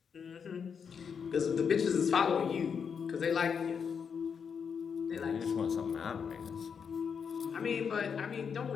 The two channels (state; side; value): quieter; right; 6.6 dB